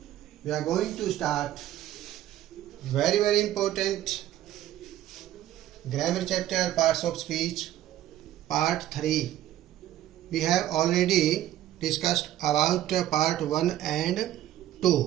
we are going to start very important grammar chapter, parts of speech, part 3. We have already discussed about part 1 and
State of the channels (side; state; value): left; quieter; 13.0 dB